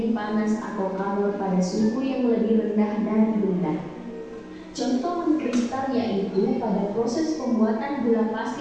panas atau kalor pada suhu yang lebih rendah dari benda. Contoh mengkristal yaitu pada proses pembuatan gula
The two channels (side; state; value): both; identical; correlation 1.00